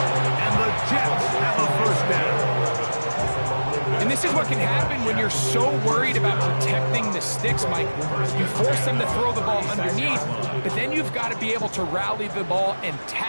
And the Jets have a 1st down. And this is what can happen when you're so worried about protecting the sticks, Mike. You force them to throw the ball underneath, but then you've got to be able to rally the ball and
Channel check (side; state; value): both; inverted; correlation -1.00